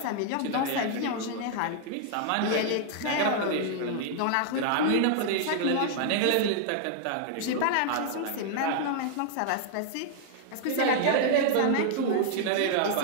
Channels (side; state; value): both; different; correlation -0.01